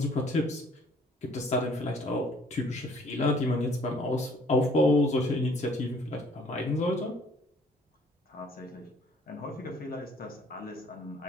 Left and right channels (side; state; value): both; normal; correlation 0.59